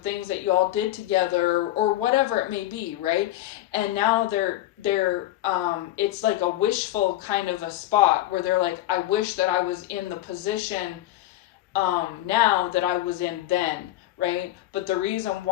things that you all did together, or whatever it may be, right? And now they're it's like a wishful kind of a spot where they're like, I wish that I was in the position now that I was in then, right? But the reason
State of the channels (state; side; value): quieter; right; 14.8 dB